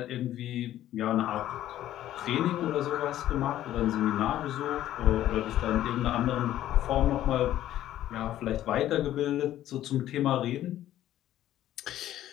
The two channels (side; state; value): right; quieter; 12.9 dB